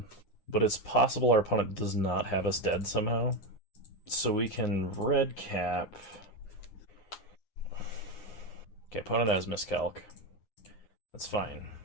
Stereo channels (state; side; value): late; right; 9.7 ms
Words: But it's possible our opponent does not have us dead somehow. So we can red cap. Okay, opponent has Miscalc. That's fine.